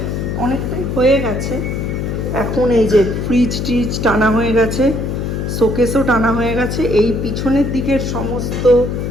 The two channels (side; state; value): left; noise; hum, 2 dB below the sound